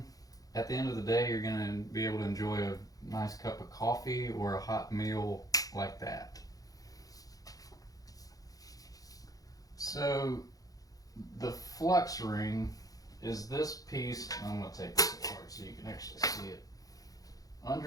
at the end of the day, you're going to be able to enjoy a nice cup of coffee or a hot meal like that. So the flux ring is this piece. I'm going to take this apart so you can actually see it.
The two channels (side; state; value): right; late; 0.17 ms